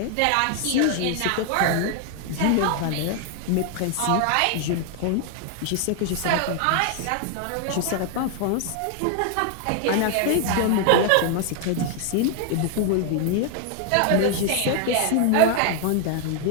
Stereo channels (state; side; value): different; both; correlation 0.00